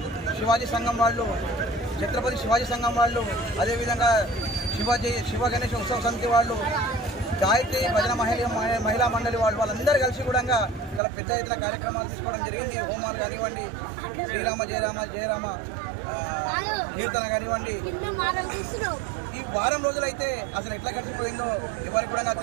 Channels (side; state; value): left; drops out; at 11.0 s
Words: శివాజీ సంఘం వాళ్ళు, ఛత్రపతి శివాజీ సంఘం వాళ్ళు, అదేవిధంగా శివ గణేష్ ఉత్సవ సమితి వాళ్ళు, గాయత్రి భజన మహిళా మండలి వాళ్ళందరూ కలిసి కూడా చాలా పెద్ద ఎత్తున కార్యక్రమాలు తీసుకోవడం జరిగింది. హోమాలు కానివ్వండి, శ్రీరామ జయరామ జయరామ కీర్తన కానివ్వండి. ఈ వారం రోజులైతే అసలు ఎట్లా గడిచిపోయిందో ఎవరికి కూడా